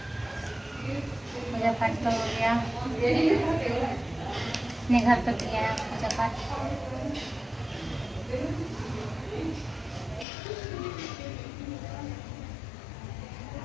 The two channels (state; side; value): drops out; right; at 10.2 s